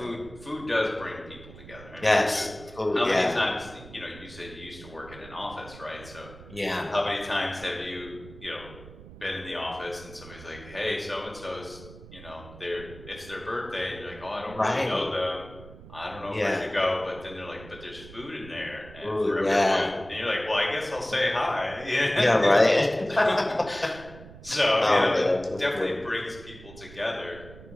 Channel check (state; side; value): noise; right; rumble, 17 dB below the sound